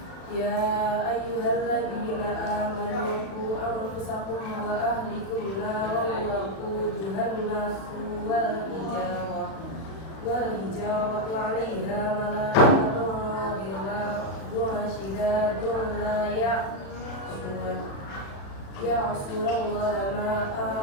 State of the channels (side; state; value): right; late; 36 ms